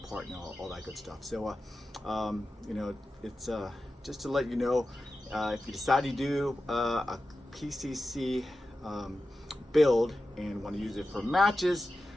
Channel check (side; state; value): both; normal; correlation 0.93